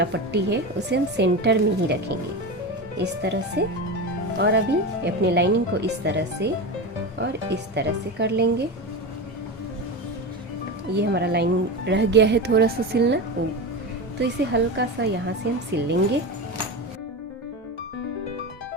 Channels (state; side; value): normal; both; correlation 0.21